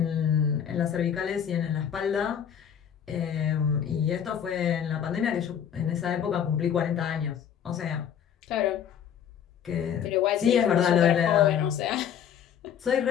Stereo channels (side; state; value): right; quieter; 8.7 dB